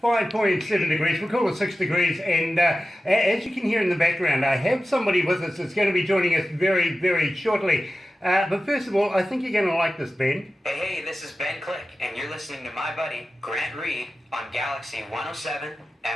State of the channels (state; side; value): normal; both; correlation 0.93